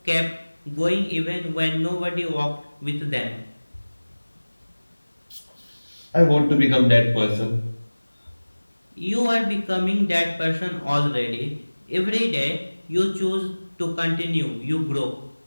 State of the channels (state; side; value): inverted; both; correlation -1.00